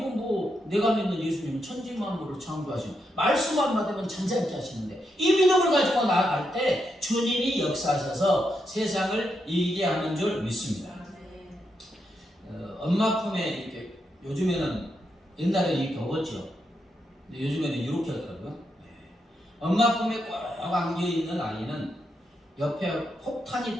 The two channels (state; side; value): normal; both; correlation 0.82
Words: 뭐 내가 믿는 예수님은 천지 만물을 창조하시는 말씀만 받으면 잔잔케 하시는데 이 믿음을 가지고 나아갈 때 주님이 역사하셔서 세상을 이기게 하는 줄 믿습니다. 엄마 품에 이렇게 요즘에는 옛날에 이렇게 먹었죠. 근데 요즘에는 이렇게 하더라고요. 엄마 품에 꼭 안겨있는 아이는 옆에 폭탄이